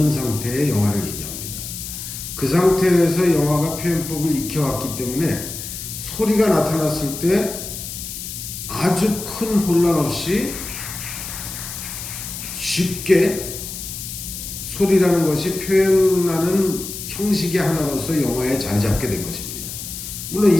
상태의 영화를 얘기합니다. 그 상태에서 영화가 표현법을 익혀왔기 때문에 소리가 나타났을 때 아주 큰 혼란 없이 쉽게 소리라는 것이 표현하는 형식의 하나로서 영화에 자리 잡게 된 것입니다. 물론 2,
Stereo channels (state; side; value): noise; left; hiss, 8 dB below the sound